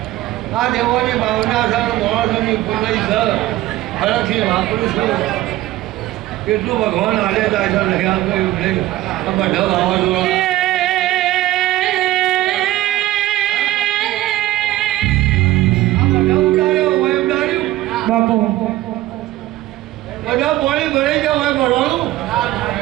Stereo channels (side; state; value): left; quieter; 15.9 dB